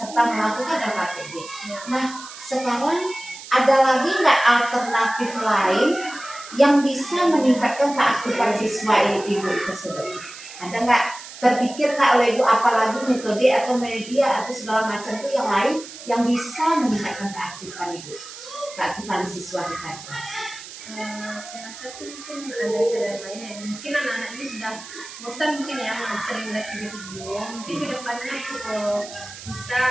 melakukan LKTB. Nah, sekarang ada lagi nggak alternatif lain yang bisa meningkatkan keaktifan siswa Ibu tersebut? Ada nggak terpikir nggak oleh Ibu apalagi metode atau media atau segala macam itu yang lain yang bisa meningkatkan keaktifan Ibu, keaktifan siswa di kelas? Saya rasa sih mungkin ada cara lain ya. Mungkin anak-anak ini sudah bosan mungkin ya sering lihat video. Mungkin kedepannya bisa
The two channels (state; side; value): noise; right; hiss, 14 dB below the sound